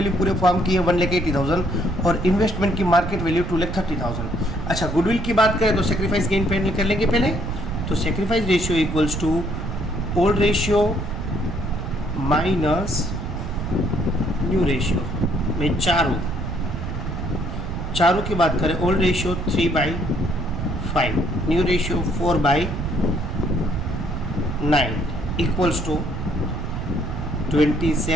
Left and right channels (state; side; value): noise; right; rumble, 5 dB below the sound